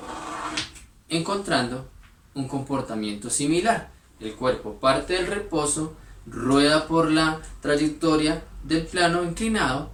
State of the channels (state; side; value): identical; both; correlation 1.00